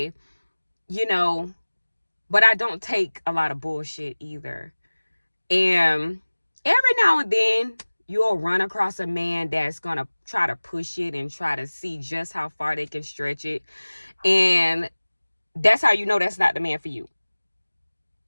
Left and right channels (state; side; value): inverted; both; correlation -1.00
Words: I don't take a lot of bullshit either. And every now and then you'll run across a man that's going to try to push it and try to see just how far they can stretch it. And that's how you know that's not the man for you.